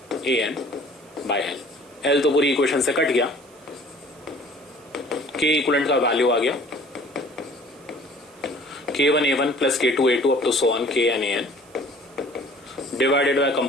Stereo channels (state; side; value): noise; right; hiss, 28 dB below the sound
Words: AN by L। L तो पूरी इक्वेशन से कट गया, के इक्विवेलेंट का वैल्यू आ गया K1A1 plus K2A2 up to so on KNAN divided by